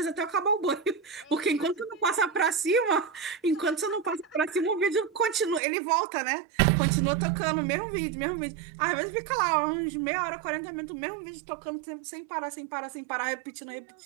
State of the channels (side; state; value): left; drops out; at 5.6 s